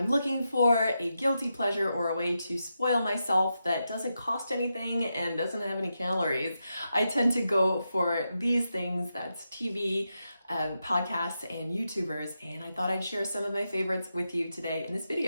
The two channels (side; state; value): both; inverted; correlation -0.87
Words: looking for a guilty pleasure or a way to spoil myself that doesn't cost anything and doesn't have any calories, I tend to go for these things. That's TV, podcasts, and YouTubers, and I thought I'd share some of my favorites with you today in this